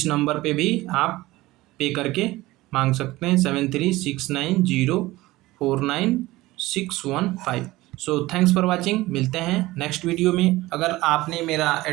नंबर पे भी आप पे करके मांग सकते हैं 7369049615। सो थैंक्स फॉर वाचिंग, मिलते हैं नेक्स्ट वीडियो में। अगर आपने मेरा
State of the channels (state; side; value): quieter; left; 18.6 dB